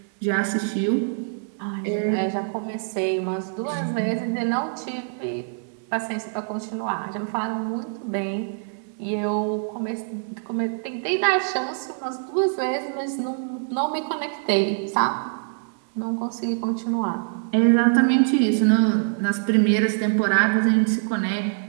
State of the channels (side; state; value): left; silent; digital silence